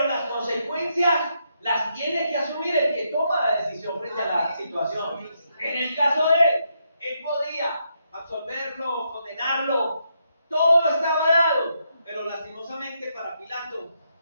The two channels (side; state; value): both; inverted; correlation -0.79